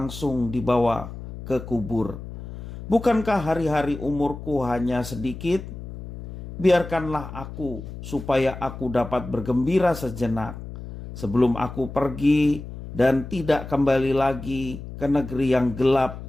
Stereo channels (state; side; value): noise; left; hum, 11 dB below the sound